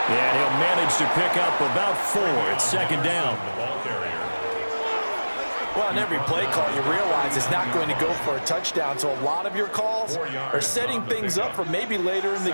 And he'll manage to pick up about 4. It's second down. The ball carrier. Well, on every play call, you realize it's not going to go for a touchdown, so a lot of your calls are setting things up for maybe later in the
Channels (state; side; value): inverted; both; correlation -1.00